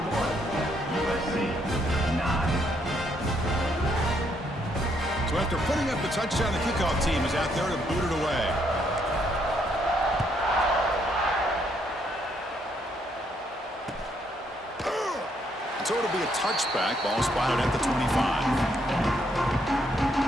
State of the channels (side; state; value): both; normal; correlation 0.73